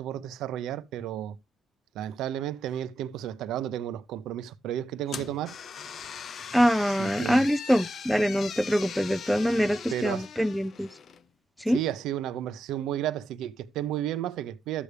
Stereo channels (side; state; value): both; normal; correlation 0.85